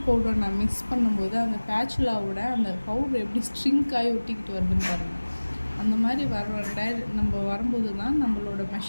பவுடர் நான் மிக்ஸ் பண்ணும்போது அந்த பேச்சுலாவோட அந்த பவுடர் எப்படி ஸ்ட்ரிங்க் ஆகி ஒட்டிக்கிட்டு வருதுன்னு பாருங்கள். அந்த மாதிரி நம்ம வரும்போது தான் நம்மளோட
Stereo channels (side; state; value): both; inverted; correlation -1.00